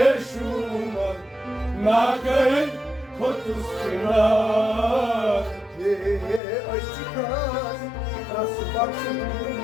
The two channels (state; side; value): drops out; right; at 6.4 s